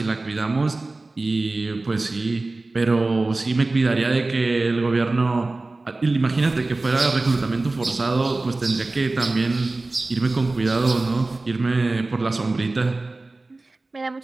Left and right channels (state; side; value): quieter; left; 3.2 dB